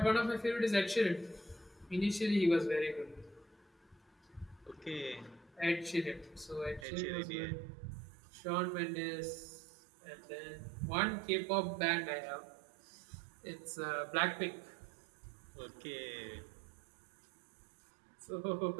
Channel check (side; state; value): left; drops out; at 6.9 s